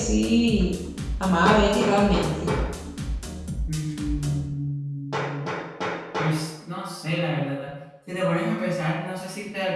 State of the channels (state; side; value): identical; both; correlation 1.00